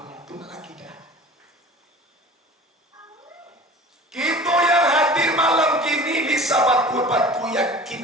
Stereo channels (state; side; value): normal; both; correlation 0.41